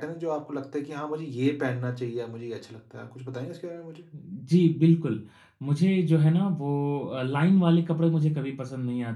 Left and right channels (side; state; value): both; identical; correlation 1.00